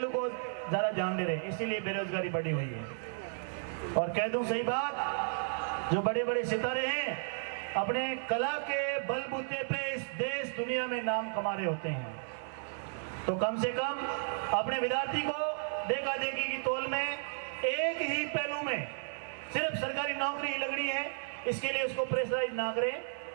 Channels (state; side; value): silent; left; 55 dB below the other